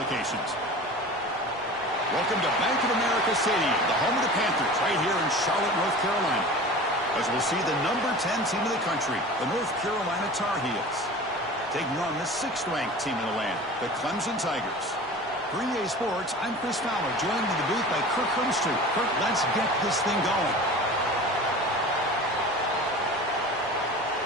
Welcome to Bank of America Stadium, the home of the Panthers, right here in Charlotte, North Carolina, as we'll see the number 10 team in the country, the North Carolina Tar Heels, taking on the 6th-ranked team in the land, the Clemson Tigers. For EA Sports, I'm Chris Fowler, joined in the booth by Kirk Hermstreet. Kirk, let's get this thing going.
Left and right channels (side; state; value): both; normal; correlation 0.37